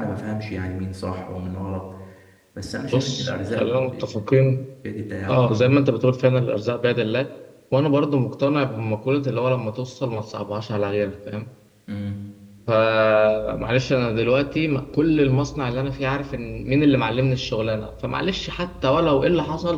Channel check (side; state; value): both; identical; correlation 1.00